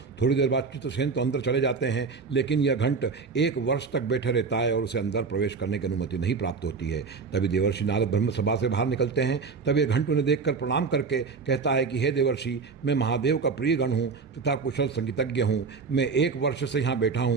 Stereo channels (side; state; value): left; quieter; 4.9 dB